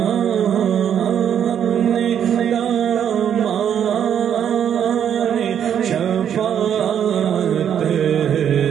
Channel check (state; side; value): quieter; left; 9.0 dB